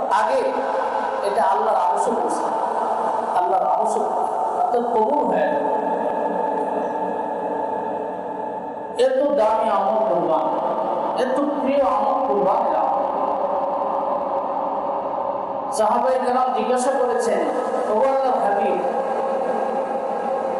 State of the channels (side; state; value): both; identical; correlation 1.00